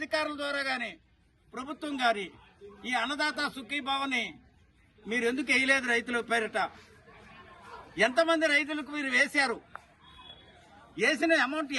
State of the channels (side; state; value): both; identical; correlation 1.00